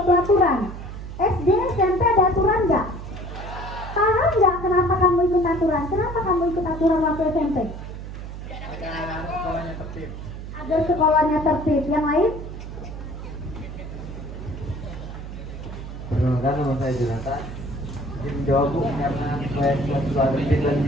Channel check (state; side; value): noise; right; hum, 10 dB below the sound